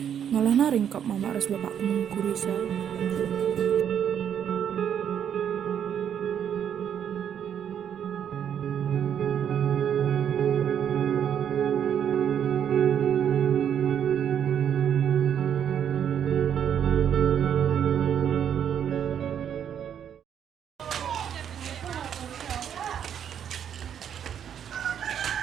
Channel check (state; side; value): quieter; left; 8.9 dB